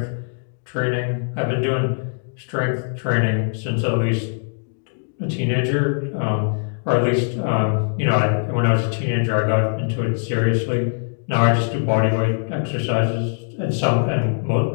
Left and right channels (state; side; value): silent; right; digital silence